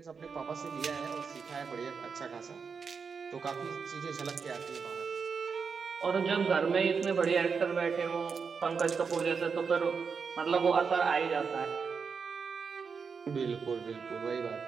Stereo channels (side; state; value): left; quieter; 5.7 dB